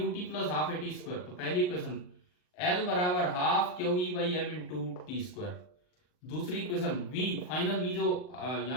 plus half at square, तो पहली इक्वेशन L बराबर half QE by M into T square. दूसरी इक्वेशन V, फाइनल V जो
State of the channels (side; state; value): right; late; 39 ms